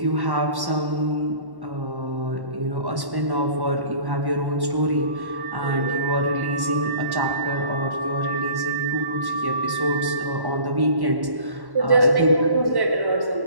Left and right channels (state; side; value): late; left; 1.1 ms